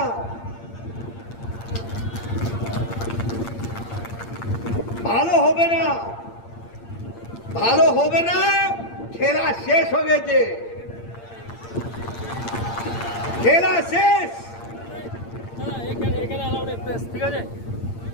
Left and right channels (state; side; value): late; right; 8.7 ms